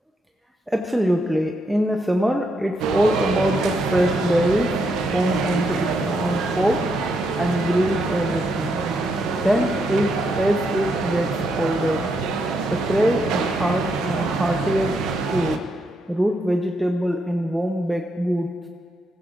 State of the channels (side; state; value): both; normal; correlation 0.79